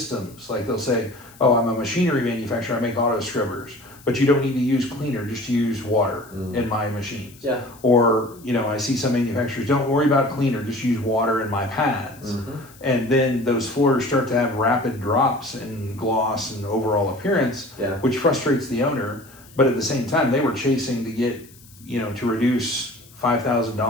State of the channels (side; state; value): left; noise; hiss, 24 dB below the sound